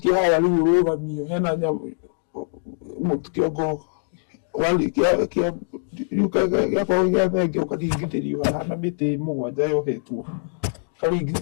haya rĩu ũrũgamio hena nyamũ kĩongo warĩkia gĩakorwo gĩa thenge ũkaringithĩrio haha na mĩtĩ mũgwanja yohetwo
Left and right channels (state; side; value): silent; right; digital silence